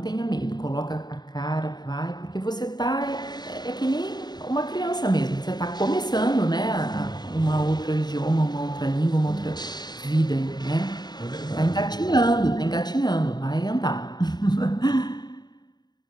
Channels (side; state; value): right; late; 0.20 ms